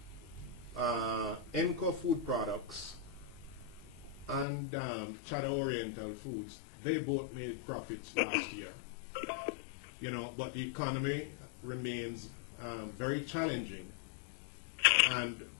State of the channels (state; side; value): drops out; right; at 4.5 s